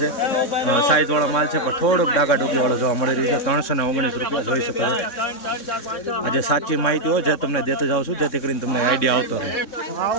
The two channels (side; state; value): right; late; 3.6 ms